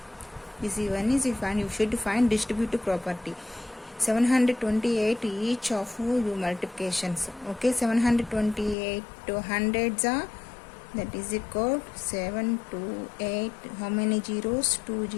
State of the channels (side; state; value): right; drops out; at 8.8 s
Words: this one is you should find distributive property. 728 each of you multiplications. Okay, 728 to hundreds are, that is equal to 7 to 8. How many zeros? 2